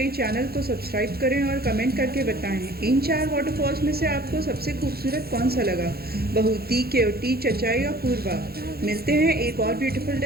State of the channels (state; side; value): late; left; 0.45 ms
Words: चैनल को सब्सक्राइब करें और कमेंट करके बताएं इन 4 वाटरफॉल्स में से आपको सबसे खूबसूरत कौन सा लगा। बहुती, केवटी, चचाई और पूर्वा। मिलते हैं एक और ब्यूटीफुल